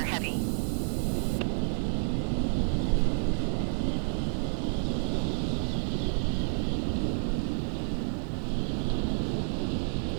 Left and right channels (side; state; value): left; silent; digital silence